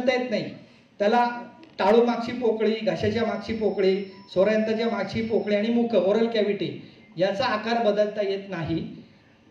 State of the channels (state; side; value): identical; both; correlation 1.00